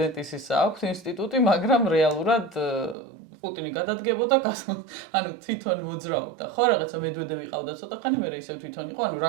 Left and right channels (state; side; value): drops out; left; at 3.0 s